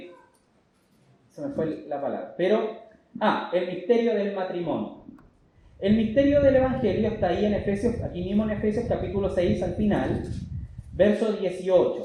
me fue la palabra. El misterio del matrimonio. El misterio del Evangelio está ahí en Efesios, aquí mismo en Efesios capítulo 6 al final, verso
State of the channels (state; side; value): identical; both; correlation 1.00